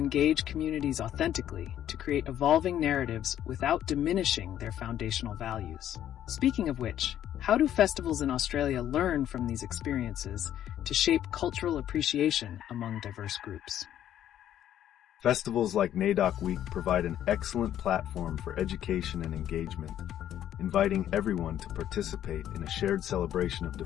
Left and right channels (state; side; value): quieter; right; 11.2 dB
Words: communities authentically to create evolving narratives without diminishing their foundational values. Speaking of which, how do festivals in Australia learn from these experiences to shape cultural appreciation among diverse groups? Festivals like NAIDOC Week provide an excellent platform for education and engagement, inviting everyone to participate in a shared celebration of